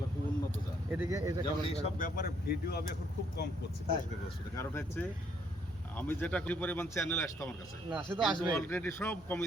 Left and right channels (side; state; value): right; noise; hum, 23 dB below the sound